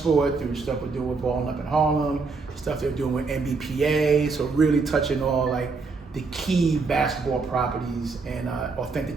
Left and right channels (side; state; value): left; quieter; 4.3 dB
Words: through stuff we're doing with Balling Up in Harlem, stuff they're doing with NBPA, so really touching all like the key basketball properties and